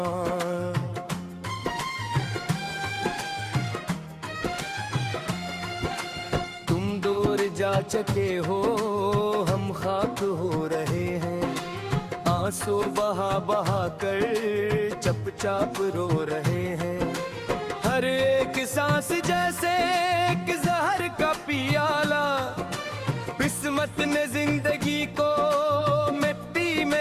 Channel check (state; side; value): identical; both; correlation 1.00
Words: तुम दूर जा चके हो, हम खाक हो रहे हैं, आंसू बहा बहा कर चुपचाप रो रहे हैं। हर एक सांस जैसे एक जहर का पियाला, किस्मत ने जिंदगी को मिट्टी